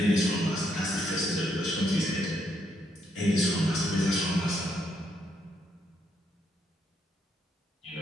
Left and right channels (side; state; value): both; normal; correlation 0.75